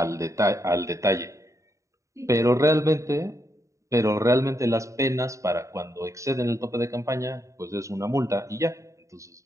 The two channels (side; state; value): left; late; 0.15 ms